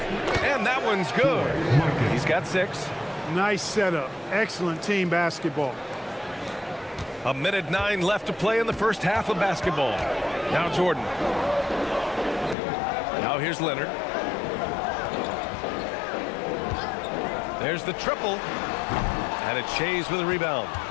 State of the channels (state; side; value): drops out; right; at 12.6 s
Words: And that one's good. He's got 6. Nice setup. Excellent team basketball. A minute 9 left to play in the first half of basketball. Now Jordan. Now here's Leonard. There's the triple. And it's Shays with a rebound.